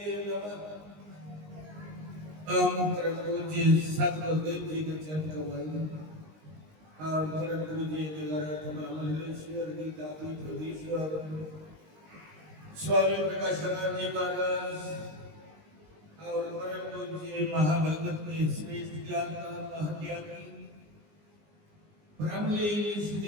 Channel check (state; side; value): late; left; 19 ms